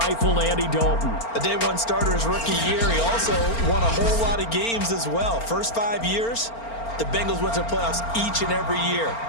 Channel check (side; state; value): right; late; 4.4 ms